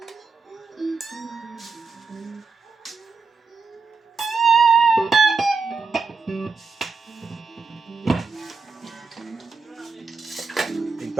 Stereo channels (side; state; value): left; quieter; 4.5 dB